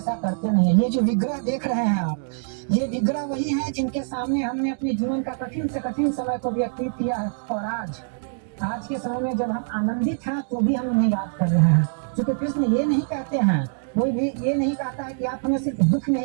करते नहीं है। ये जो विग्रह देख रहे हैं आप, ये विग्रह वही है जिनके सामने हमने अपने जीवन का कठिन से कठिन समय को व्यतीत किया है। और आज के समय में जब हम आनंदित हैं तो भी हम उन्हें याद कर रहे हैं, क्योंकि कृष्ण ये नहीं कहते हैं, कोई भी ये नहीं कहता है कि आप हमें सिर्फ दुख में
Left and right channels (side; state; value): left; silent; digital silence